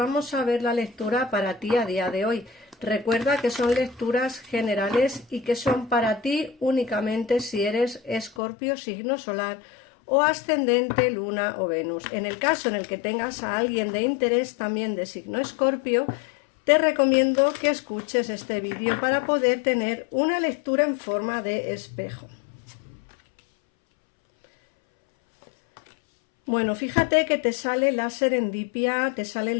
a ver la lectura para ti a día de hoy. Recuerda que son lecturas generales y que son para ti únicamente si eres Escorpio, signo solar o ascendente, luna o Venus. En el caso en el que tengas a alguien de interés también de signo Escorpio, te recomiendo que escuches este vídeo para poder tener una lectura en forma de espejo. Bueno, fíjate que te sale la serendipia, te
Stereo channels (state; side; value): drops out; right; at 8.3 s